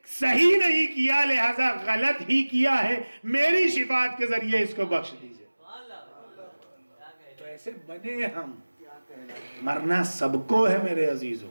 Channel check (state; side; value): inverted; both; correlation -1.00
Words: सही नहीं किया लिहाजा गलत ही किया है, मेरी शिफात के जरिए इसको बख्श दीजिए। तो ऐसे बने हम। मरना सबको है मेरे अजीजों,